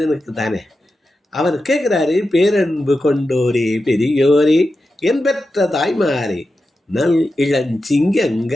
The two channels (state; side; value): normal; both; correlation 0.91